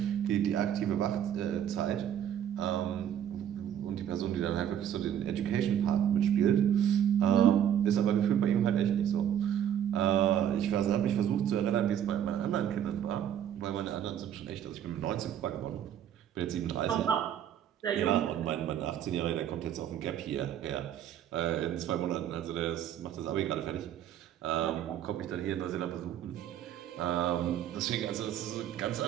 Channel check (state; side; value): quieter; left; 10.0 dB